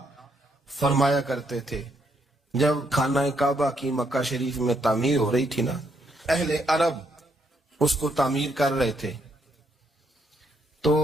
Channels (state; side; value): normal; both; correlation 0.74